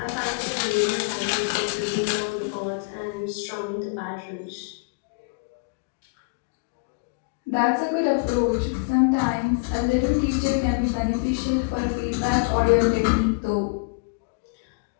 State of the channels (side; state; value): right; quieter; 34.1 dB